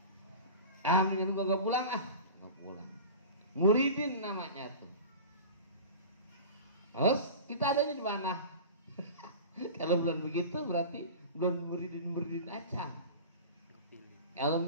mendingan gua gak pulang gak pulang. Muridin namanya tuh. Terus kita adanya di mana? Kalau belum begitu berarti belum muridin aja. Kalau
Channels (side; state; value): both; inverted; correlation -0.34